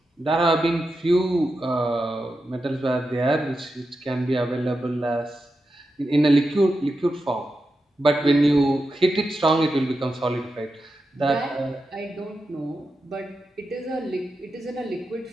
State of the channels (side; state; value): both; normal; correlation 0.89